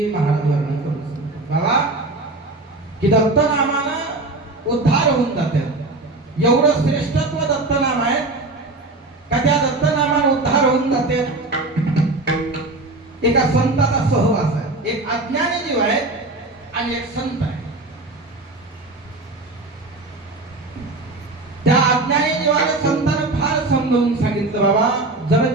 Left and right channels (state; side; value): quieter; left; 3.0 dB